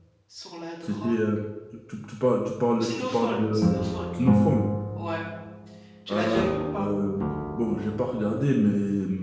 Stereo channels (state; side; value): identical; both; correlation 1.00